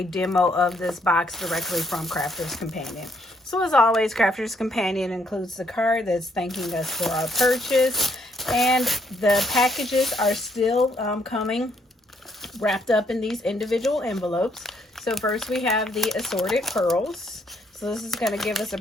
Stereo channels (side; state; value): both; normal; correlation 0.71